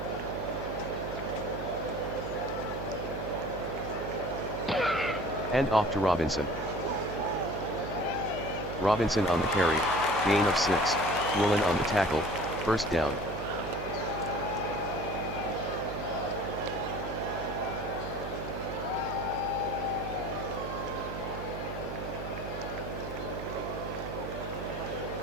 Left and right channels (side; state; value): right; noise; hum, 8 dB below the sound